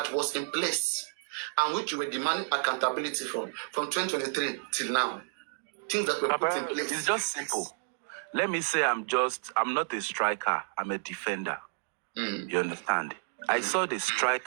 was in place and which you were demanding accountability from 2023 till now? Things that were put in place. It's just simple. Let me say I'm not a striker, I'm a defender. You understand? I saw the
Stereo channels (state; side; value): silent; left; 55 dB below the other